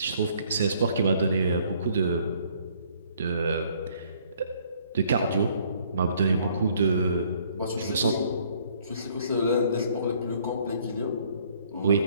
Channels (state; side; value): inverted; both; correlation -0.62